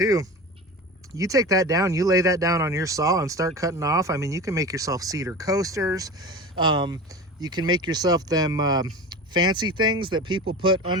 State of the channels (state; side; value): normal; both; correlation 0.32